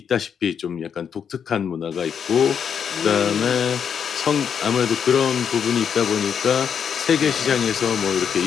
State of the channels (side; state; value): right; quieter; 7.5 dB